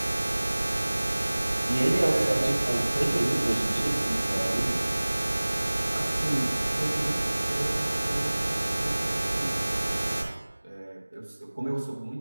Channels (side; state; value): both; inverted; correlation -1.00